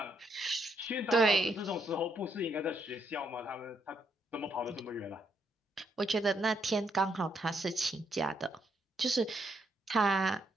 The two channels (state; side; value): normal; both; correlation 0.75